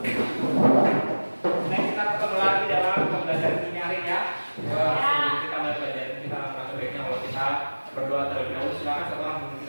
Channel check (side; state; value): both; inverted; correlation -1.00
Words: Nah, kita ketemu lagi dalam pembelajaran ini hari ya. Sebelum kita mulai pelajaran kita akan sebaiknya kalau kita berdoa terlebih dahulu. Silakan satu orang memimpin